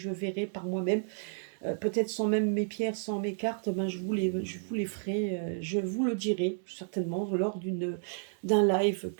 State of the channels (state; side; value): silent; left; digital silence